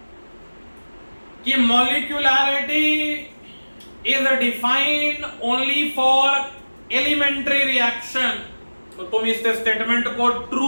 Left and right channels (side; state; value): both; inverted; correlation -1.00